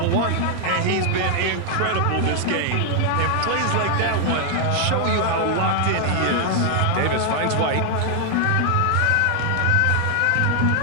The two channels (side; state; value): both; different; correlation 0.00